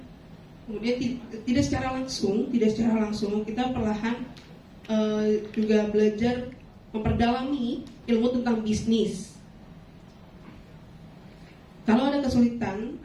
kemudian tidak secara langsung kita perlahan juga belajar memperdalami ilmu tentang bisnis. Kalau ada kesulitan,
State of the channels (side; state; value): both; identical; correlation 1.00